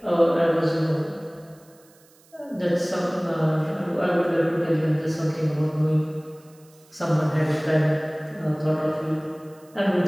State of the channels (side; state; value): right; noise; hiss, 29 dB below the sound